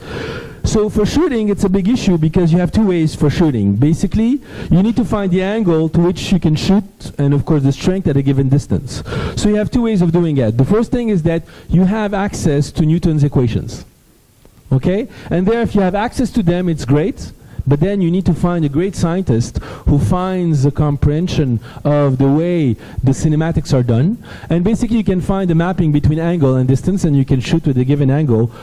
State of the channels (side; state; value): both; identical; correlation 1.00